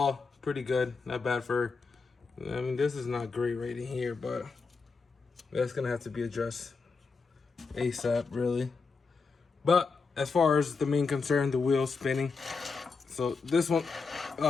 pretty good. Not bad for. I mean, this is not great right in here, but that's gonna have to be addressed ASAP, really. But as far as the main concern, the wheels spinning. So this one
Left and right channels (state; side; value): quieter; right; 4.6 dB